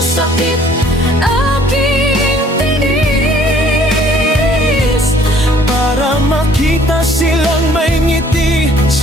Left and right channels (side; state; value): both; normal; correlation 0.58